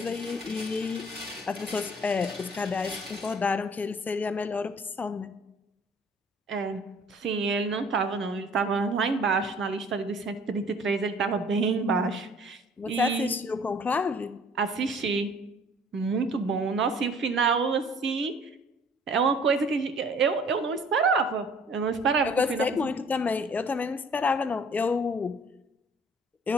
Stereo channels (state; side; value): normal; both; correlation 0.53